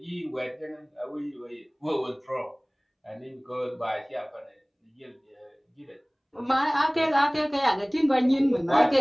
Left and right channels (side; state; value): both; identical; correlation 1.00